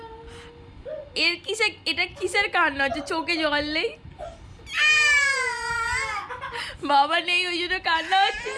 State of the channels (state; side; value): identical; both; correlation 1.00